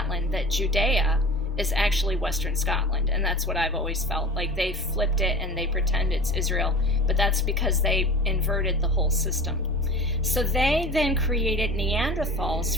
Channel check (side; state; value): both; normal; correlation 0.37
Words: that Judea is actually Western Scotland. And that's what I've always felt. Like they flipped it and they pretend it's Israel, but that's because they inverted the whole system. So they then created